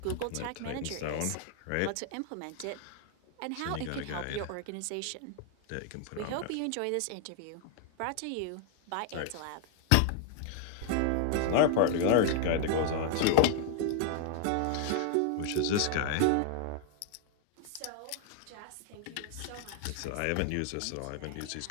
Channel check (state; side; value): different; both; correlation 0.00